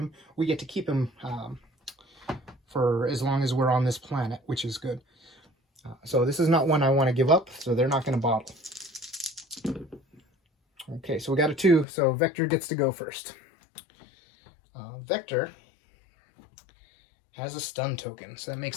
we get to keep him for as long as we're on this planet, which is good. So this is not one I want to give up, so they're not going to bottle. Okay, so we got a 2, so Vector gets to go first. Vector has a stun token, so that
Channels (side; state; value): right; drops out; at 11.9 s